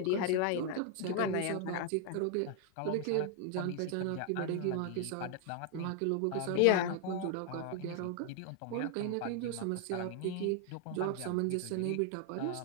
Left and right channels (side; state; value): both; different; correlation 0.00